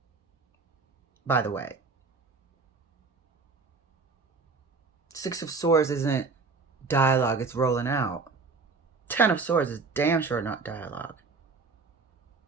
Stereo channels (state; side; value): quieter; left; 4.3 dB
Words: by the way. Six of Swords isn't dialogue, it's rolling out. Ten of Swords is damn sure not dialogue.